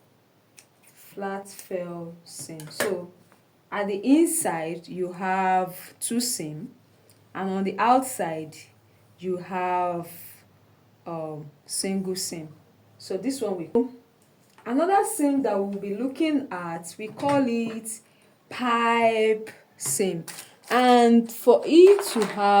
flat fell seam. So at the inside you have two seam, and on the outside you have single seam. So this one we another seam that we'll be looking at, we call it pipe seam. And for it to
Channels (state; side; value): identical; both; correlation 1.00